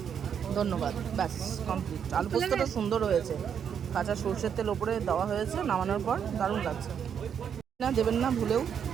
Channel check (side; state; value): left; quieter; 7.9 dB